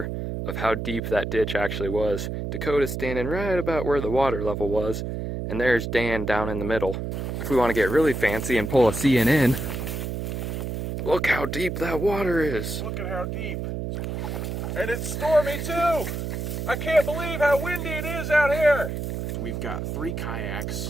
of how deep that ditch actually was. Dakota's standing right about where the water level was, and there's Dan down in the middle. If we want to get really fancy and pull a CNN, look how deep that water is. Look at how deep. And it's stormy too. I can't believe how windy it is out here. We've got 3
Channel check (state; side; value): noise; right; hum, 4 dB below the sound